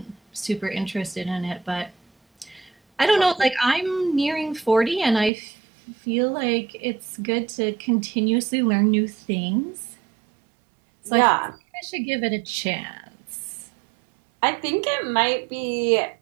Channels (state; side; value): drops out; left; at 5.3 s